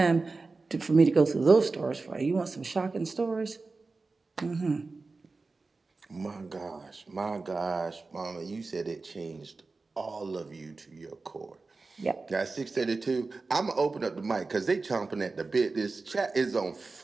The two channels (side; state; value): left; quieter; 3.8 dB